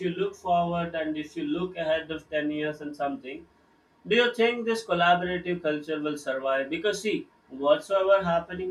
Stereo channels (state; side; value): identical; both; correlation 1.00